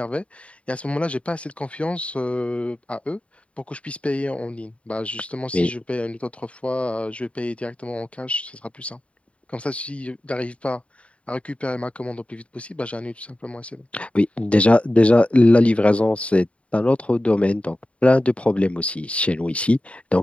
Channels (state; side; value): late; right; 0.062 ms